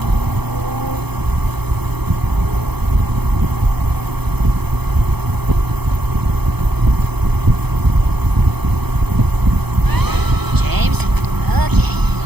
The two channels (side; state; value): left; late; 0.98 ms